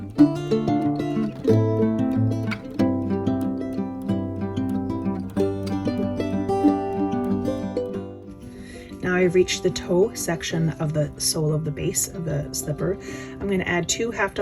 reached the toe section of the sole of the base of the slipper, I'm going to add 2 half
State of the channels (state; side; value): identical; both; correlation 1.00